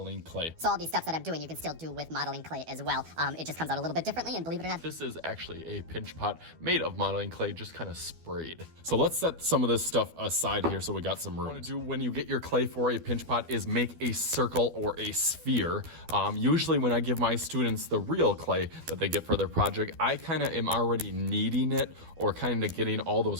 clay. So all these steps that I'm doing, you can still do with modeling clay as well. It just comes out a little bit differently, and believe it or not, this is actually a pinch pot made of modeling clay, just kind of sprayed. So let's set some of this stuff aside here so we got some room. What you want to do when you get your clay for a pinch pot is make a circle or a sphere. Usually when I give my students the real clay that they get for their project, I kind of am already kneading it or kind of getting all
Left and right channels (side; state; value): left; late; 12 ms